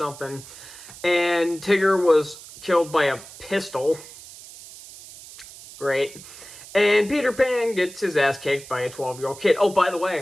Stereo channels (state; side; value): noise; right; hiss, 17 dB below the sound